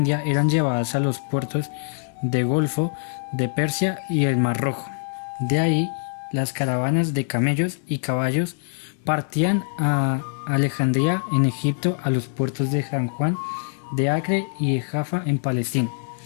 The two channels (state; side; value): silent; right; digital silence